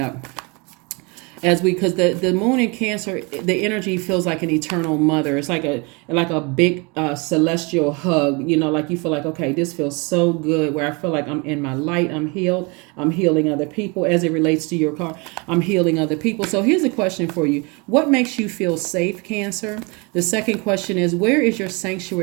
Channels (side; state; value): left; quieter; 29.6 dB